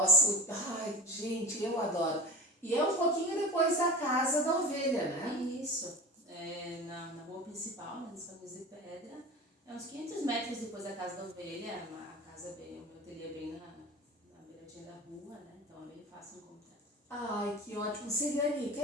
gente, eu adoro. E é um pouquinho depois da Casa da Ovelha, né? Isso. Na rua principal, nos Caminhos de Pedra. É uns 500 metros depois da Casa da Ovelha. A casa o meu ateliê é bem na beiradinha da rua, né? Então é bem fácil encontrar. Ai, que ótimo. Celiane,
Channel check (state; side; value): normal; both; correlation 0.31